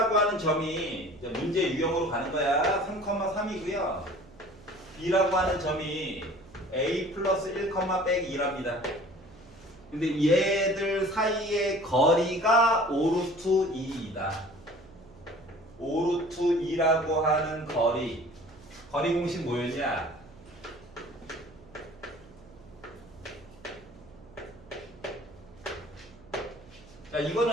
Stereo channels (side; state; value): right; noise; hum, 22 dB below the sound